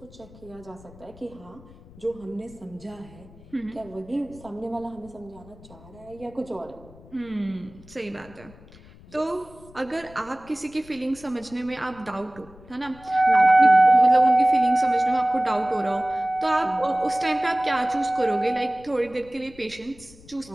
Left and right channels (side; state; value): left; noise; rumble, 22 dB below the sound